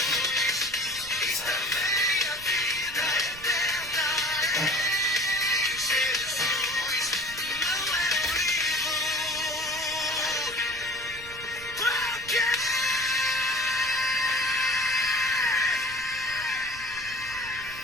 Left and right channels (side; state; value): right; noise; rumble, 17 dB below the sound